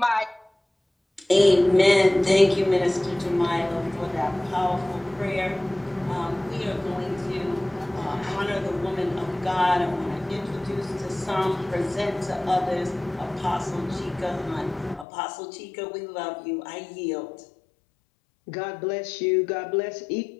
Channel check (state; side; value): drops out; right; at 15.1 s